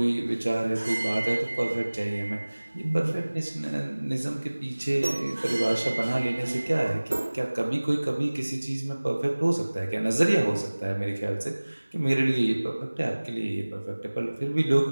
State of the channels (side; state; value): both; inverted; correlation -1.00